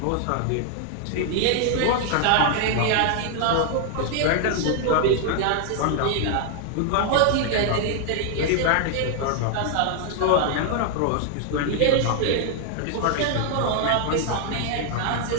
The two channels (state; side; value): different; both; correlation 0.00